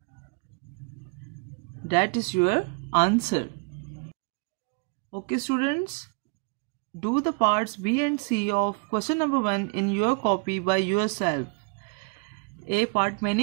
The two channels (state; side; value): quieter; left; 32.6 dB